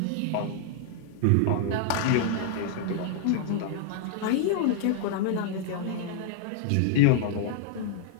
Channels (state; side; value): different; both; correlation -0.01